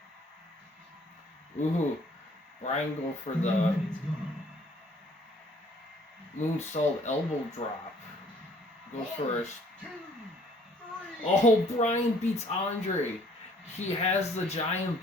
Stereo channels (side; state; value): both; normal; correlation 0.59